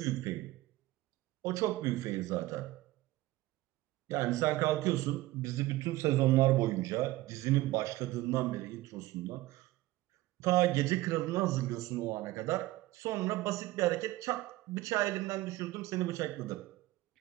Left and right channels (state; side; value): quieter; left; 17.6 dB